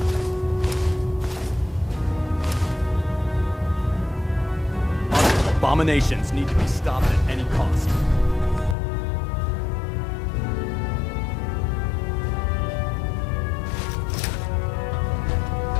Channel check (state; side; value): drops out; right; at 8.8 s